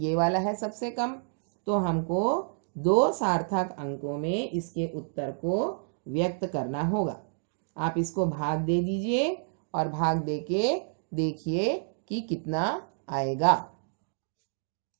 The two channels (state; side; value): silent; left; digital silence